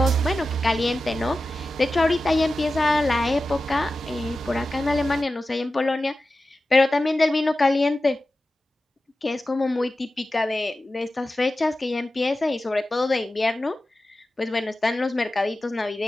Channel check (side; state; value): both; normal; correlation 0.94